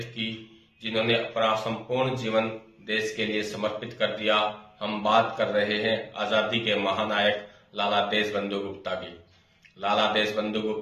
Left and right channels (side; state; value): both; identical; correlation 1.00